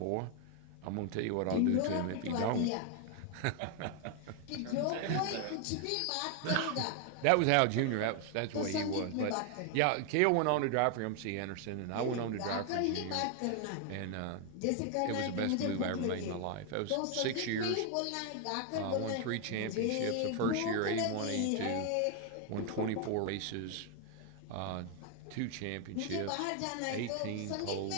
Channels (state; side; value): different; both; correlation 0.01